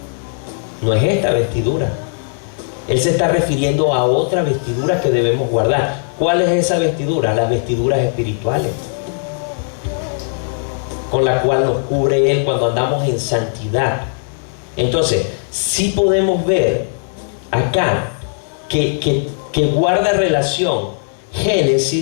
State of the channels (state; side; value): silent; right; digital silence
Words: No es esta vestidura. Él se está refiriendo a otra vestidura que debemos guardar. ¿Cuál es esa vestidura? Las vestiduras espirituales, con la cual nos cubre Él cuando andamos en santidad. Entonces, sí podemos ver acá que guarda relación